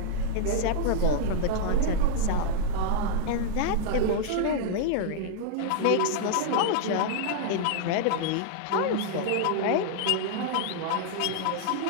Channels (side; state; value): both; different; correlation 0.00